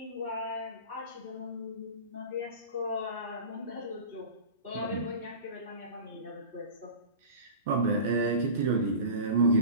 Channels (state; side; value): inverted; both; correlation -0.35